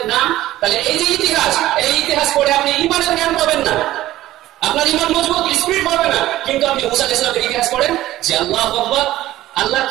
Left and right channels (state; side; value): quieter; left; 15.2 dB